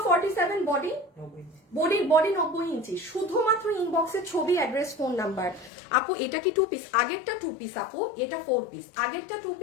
47, বডি 90 ইঞ্চি। শুধুমাত্র ইনবক্সে ছবি, অ্যাড্রেস, ফোন নাম্বার। আপু এটা কি 2 পিস? আগেরটা 2 পিস আপু, এটা 4 পিস। আগেরটা 2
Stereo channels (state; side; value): drops out; right; at 5.7 s